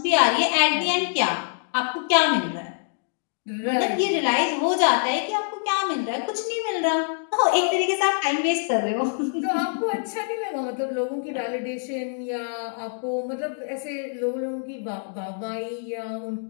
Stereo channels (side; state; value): right; silent; digital silence